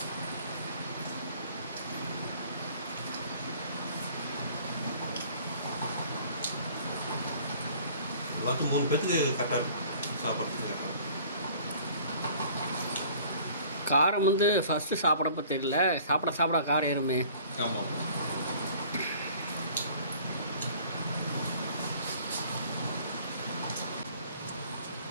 பார்த்து 3 பேருக்கு கரெக்டாக இருக்கும் சாப்பிட்றதுக்கு. காரம் வந்து ஃபஸ்ட்டு சாப்பிடப்போ தெரியல, சாப்பிட காரம் ஏறுமே. ஆமாம்.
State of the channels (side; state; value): both; inverted; correlation -0.51